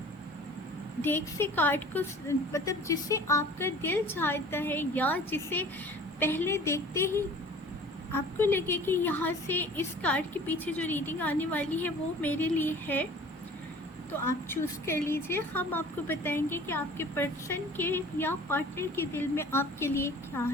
डेक से कार्ड को मतलब जिसे आपका दिल चाहता है या जिसे पहले देखते ही आपको लगे कि यहाँ से इस कार्ड के पीछे जो रीडिंग आने वाली है वो मेरे लिए है, तो आप चूज़ कर लीजिए। हम आपको बताएंगे कि आपके पर्सन के या पार्टनर के दिल में आपके लिए क्या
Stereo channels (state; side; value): normal; both; correlation 0.46